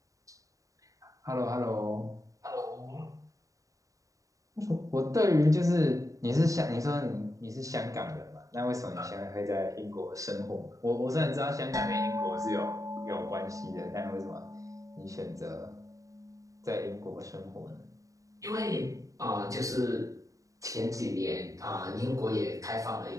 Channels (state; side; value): late; left; 0.16 ms